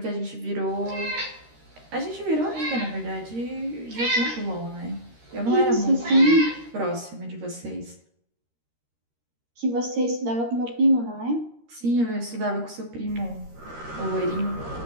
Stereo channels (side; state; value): left; late; 13 ms